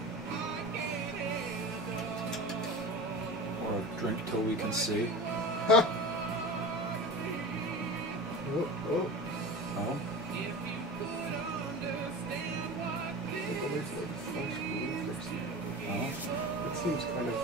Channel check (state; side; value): normal; both; correlation 0.32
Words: Or Drink Till We Can See. Ha! Oh, oh. Oh? Oh? That seems kind of